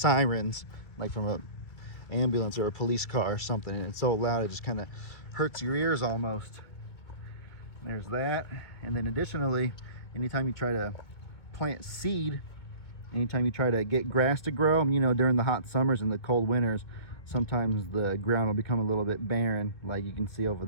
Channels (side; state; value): right; late; 1.9 ms